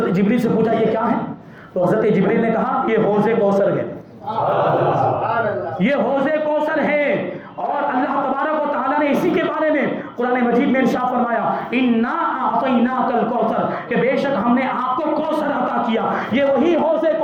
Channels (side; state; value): both; identical; correlation 1.00